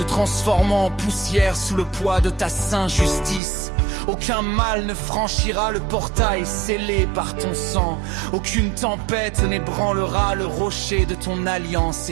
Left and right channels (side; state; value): left; drops out; at 3.4 s